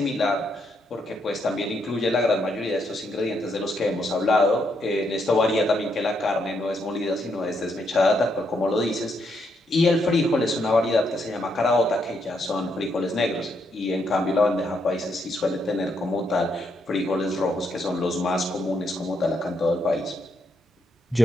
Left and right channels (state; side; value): normal; both; correlation 0.77